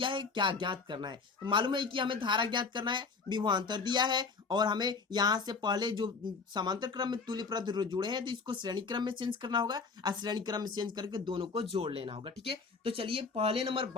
है, क्या ज्ञात करना है। तो मालूम है कि हमें धारा ज्ञात करना है, विभवांतर दिया है, और हमें यहाँ से पहले जो समांतर क्रम में तुल्य प्रतिरोध जुड़े हैं तो इसको श्रेणी क्रम में चेंज करना होगा, और श्रेणी क्रम में चेंज करके दोनों को जोड़ लेना होगा। ठीक है, तो चलिए पहले नंबर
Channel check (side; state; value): right; quieter; 4.8 dB